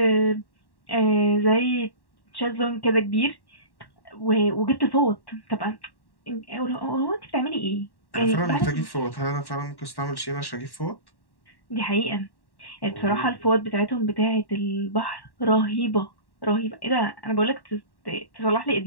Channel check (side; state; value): right; late; 1.1 ms